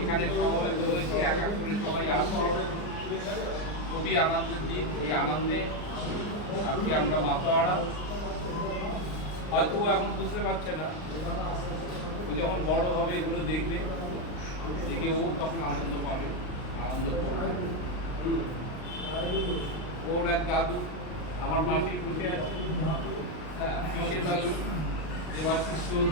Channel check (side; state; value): right; late; 39 ms